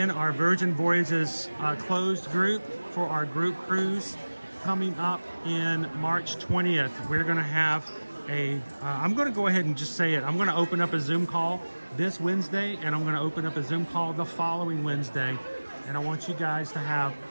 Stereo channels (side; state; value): both; inverted; correlation -1.00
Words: our Virgin Voyages closed group for our group cruise coming up in March 20th, we're gonna have I'm gonna go ahead and just say it. I'm gonna open up a Zoom call this Wednesday, and I'm gonna open up a Zoom call the following Wednesday. And I want you guys to have